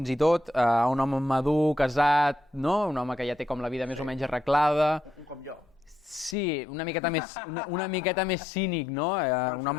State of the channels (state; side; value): drops out; right; at 6.4 s